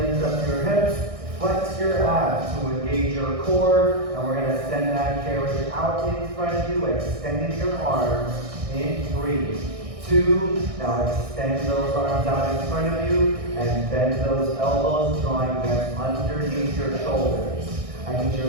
up your hips. Flex your abs to engage your core. And we're going to send that carriage out in front of you, extending your arms in 3, 2, now extend those arms out in front of you and bend those elbows, drawing them underneath your shoulders. I need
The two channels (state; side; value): late; left; 1.6 ms